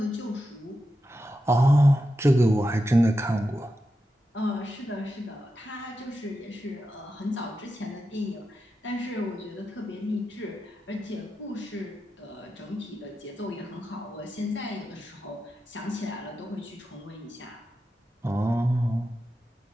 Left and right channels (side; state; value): both; normal; correlation 0.89